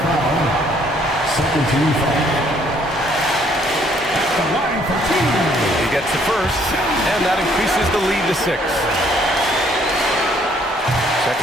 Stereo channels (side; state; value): both; normal; correlation 0.64